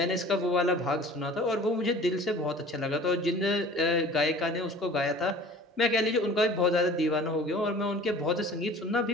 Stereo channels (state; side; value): normal; both; correlation 0.45